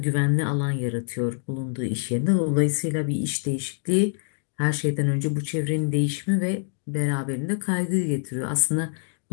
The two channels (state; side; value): silent; right; digital silence